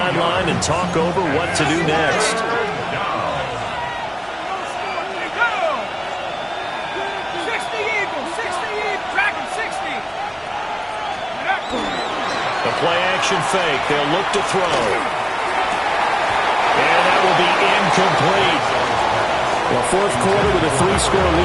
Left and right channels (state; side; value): identical; both; correlation 1.00